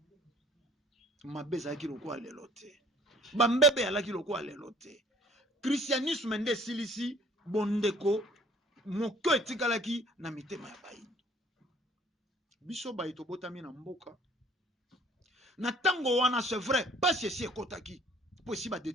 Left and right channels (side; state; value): both; normal; correlation 0.55